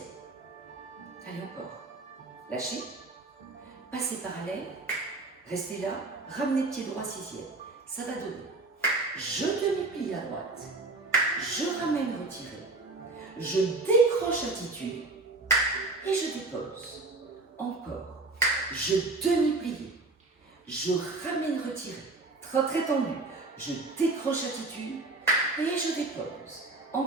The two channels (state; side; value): quieter; left; 3.3 dB